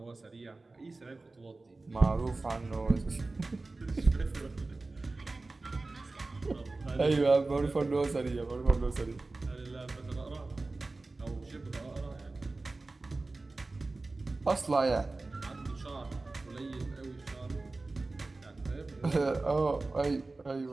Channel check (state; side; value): quieter; left; 3.3 dB